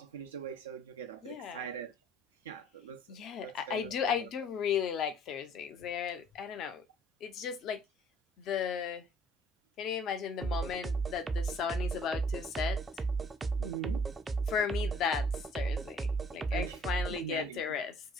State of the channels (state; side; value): normal; both; correlation 0.58